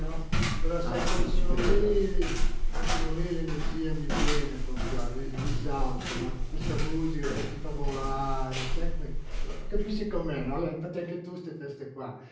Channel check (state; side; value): identical; both; correlation 1.00